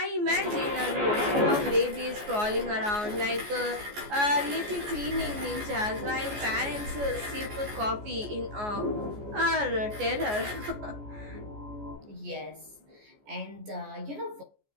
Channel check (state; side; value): late; left; 14 ms